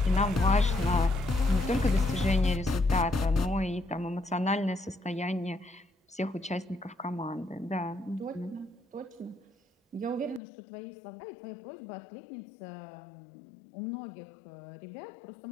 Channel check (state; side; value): drops out; right; at 10.4 s